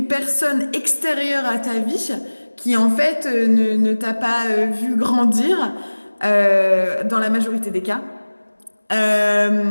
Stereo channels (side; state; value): both; inverted; correlation -1.00